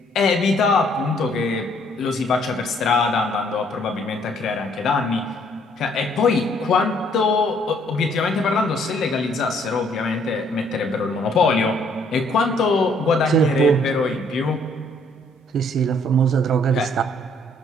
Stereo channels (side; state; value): both; normal; correlation 0.64